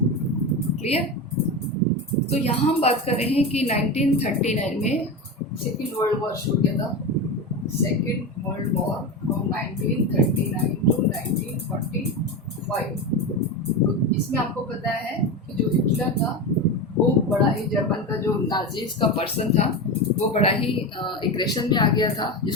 Clear? तो यहाँ हम बात कर रहे हैं कि 1939 में सेकेंड वर्ल्ड वॉर शुरू किया था। Second world war from 1939 to 1945। तो इसमें आपको पता है कि जो हिटलर था वो बड़ा ही, जर्मन का जो नाजीज का पर्सन था वो बड़ा ही एग्रेशन में आ गया था,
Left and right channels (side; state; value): both; normal; correlation 0.21